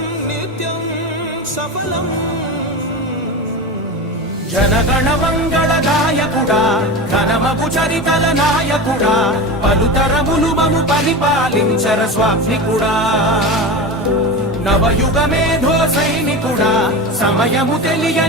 నిత్యం సఫలం జనగణ మంగళ నాయకుడా ఘనమగు చరితల నాయకుడా పలుతరములు మము పరిపాలించర స్వామికుడా నవయుగ మేధో సైనికుడా సమయము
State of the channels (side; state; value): both; normal; correlation 0.25